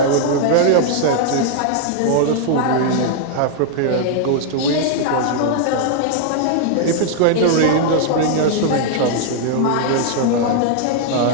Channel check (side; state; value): both; different; correlation 0.00